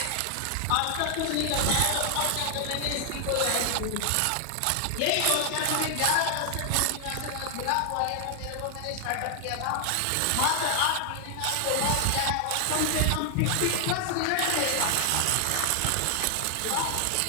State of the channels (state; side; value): different; both; correlation 0.00